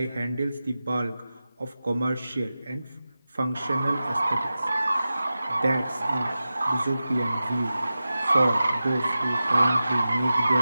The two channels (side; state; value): both; inverted; correlation -0.94